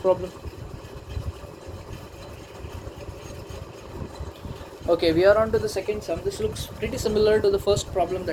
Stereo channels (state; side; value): identical; both; correlation 1.00